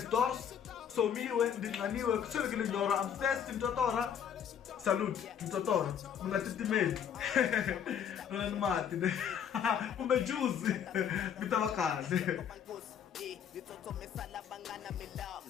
somiwe ndinqaniwe kuswelekile nyora I'm thirsty mtotora salute mtotora mi nga titimeli nona ni mati kumbe juice mi ta va kahle Nitsotsomisa labangana milaw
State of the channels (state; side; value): quieter; right; 8.4 dB